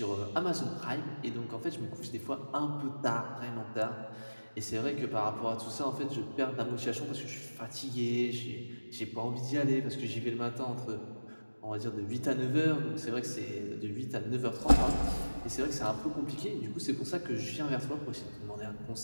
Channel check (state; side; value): inverted; both; correlation -1.00